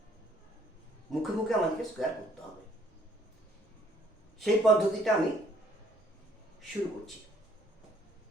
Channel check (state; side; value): normal; both; correlation 0.63